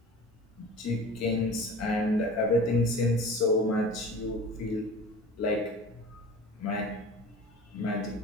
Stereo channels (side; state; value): both; normal; correlation 0.39